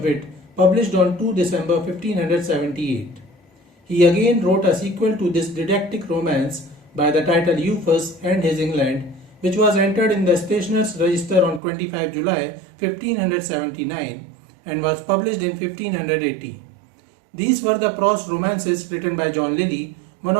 Wit, published on 2 December 1578. He again wrote a sequel to this didactic romance by the title Euphues and His England, which was entered in the Stationers' Register on 25 July 1579 and was published in 1580. These were the prose romances written by John Lyly, one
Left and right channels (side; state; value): left; drops out; at 11.6 s